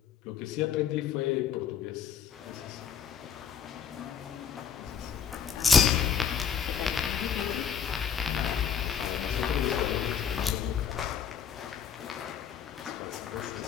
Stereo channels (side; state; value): right; quieter; 7.8 dB